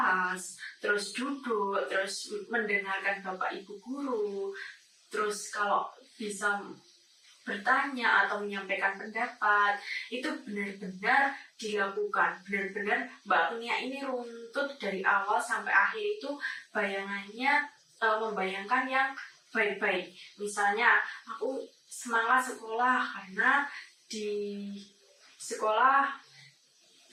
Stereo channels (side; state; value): both; identical; correlation 1.00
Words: terus duduk, terus mendengarkan Bapak Ibu guru, terus kalau bisa bertanya atau menyampaikan pendapat, itu benar-benar dilakukan. Benar-benar Mbak Agnia ini runtut dari awal sampai akhir itu bayangannya membayangkan yang baik-baik. Misalnya aku semangat sekolah karena di sekolah